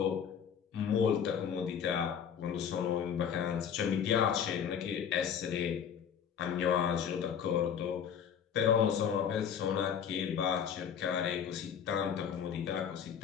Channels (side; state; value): right; quieter; 7.9 dB